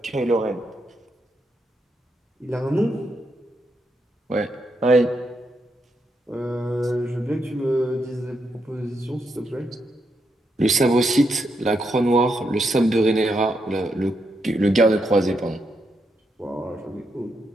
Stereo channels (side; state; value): both; normal; correlation 0.81